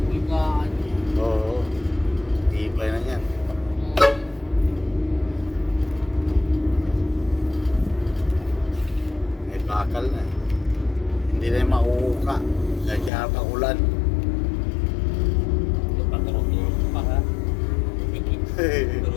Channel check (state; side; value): drops out; right; at 13.1 s